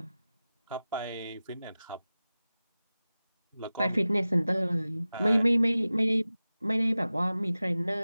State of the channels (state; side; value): inverted; both; correlation -0.96